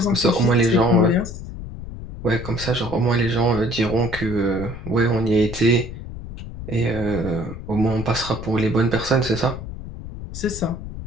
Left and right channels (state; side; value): noise; left; rumble, 10 dB below the sound